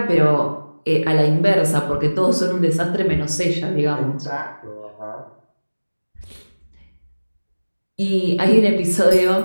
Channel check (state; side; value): inverted; both; correlation -1.00